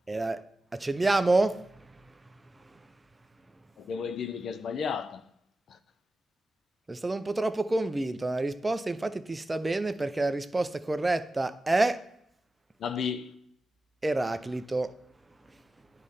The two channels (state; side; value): normal; both; correlation 0.93